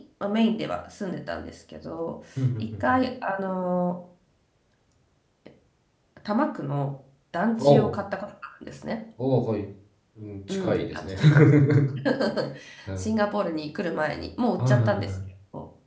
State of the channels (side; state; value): both; identical; correlation 1.00